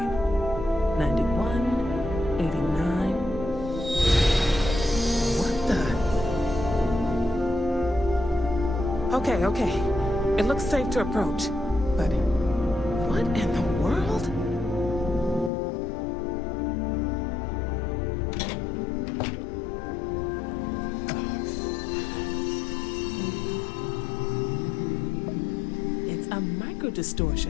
91, 89. What the? Okay. It looks safe to approach. But what in the world? It's a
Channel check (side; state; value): right; drops out; at 15.5 s